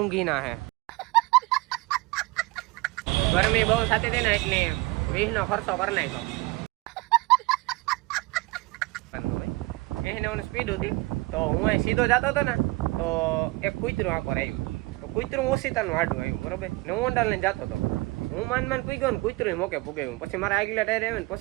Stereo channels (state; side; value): quieter; left; 22.5 dB